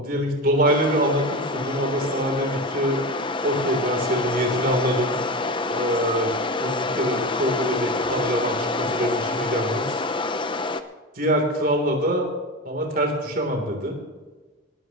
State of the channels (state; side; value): normal; both; correlation 0.24